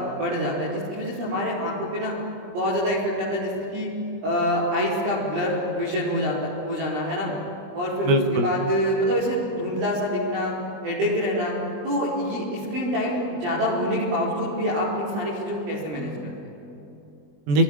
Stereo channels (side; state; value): left; late; 20 ms